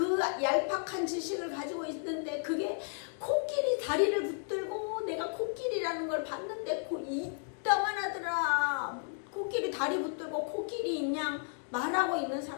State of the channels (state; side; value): silent; right; 56 dB below the other